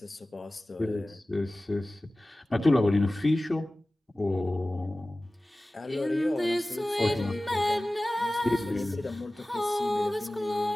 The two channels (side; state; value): both; normal; correlation 0.97